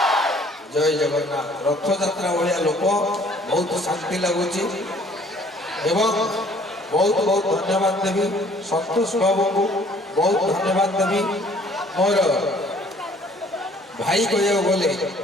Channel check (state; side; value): normal; both; correlation 0.57